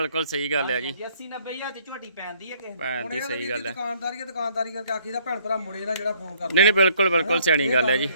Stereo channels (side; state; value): both; inverted; correlation -0.63